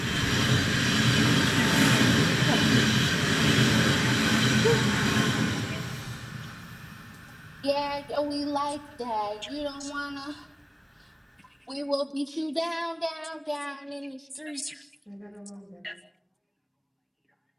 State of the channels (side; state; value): both; identical; correlation 1.00